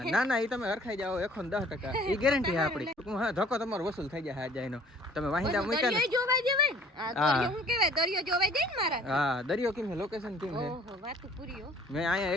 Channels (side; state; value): both; normal; correlation 0.53